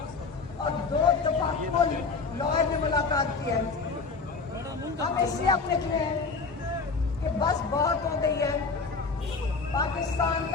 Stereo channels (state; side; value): quieter; right; 4.5 dB